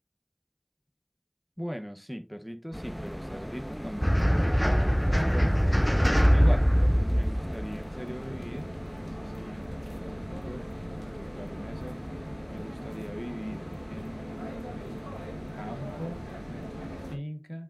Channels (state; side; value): identical; both; correlation 1.00